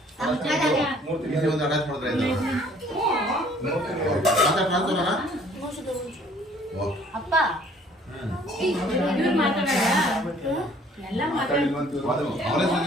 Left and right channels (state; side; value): normal; both; correlation 0.57